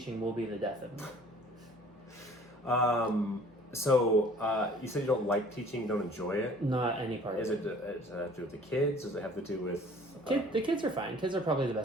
will be the death of me. So you said you don't like teaching, you don't enjoy it? Not any part of it. Does it have to do with the kids? Does it have to do with... The kids are fine. Kids are probably the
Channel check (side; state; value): both; normal; correlation 0.51